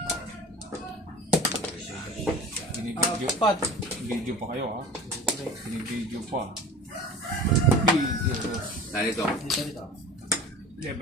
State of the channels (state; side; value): normal; both; correlation 0.39